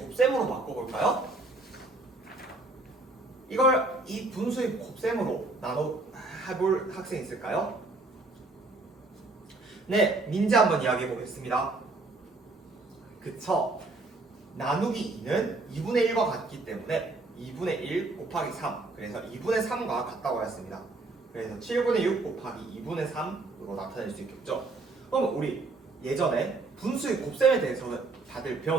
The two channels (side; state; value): left; quieter; 3.3 dB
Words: 바꿔볼까요? 이걸 이 분수의 곱셈으로 해볼 학생 있을까요? 네, 민지 한번 이야기해 보겠습니다. 그쵸? 나누기 2는 2분의 1과 같기 때문에 2분의 1 곱하기 3, 그래서 2분의 3과 같다고 하였습니다. 그래서 7분의 6 곱하기 2분의 3으로 나타낼 수 있겠죠? 그럼 우리 예전에 분수의 곱셈에 대해서 다들